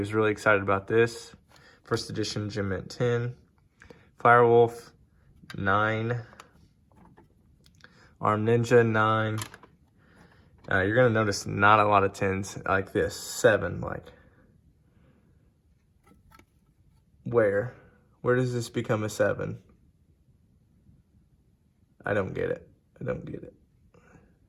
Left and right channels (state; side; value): identical; both; correlation 1.00